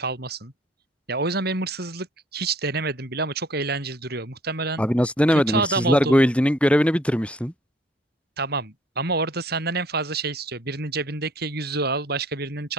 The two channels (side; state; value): both; normal; correlation 0.59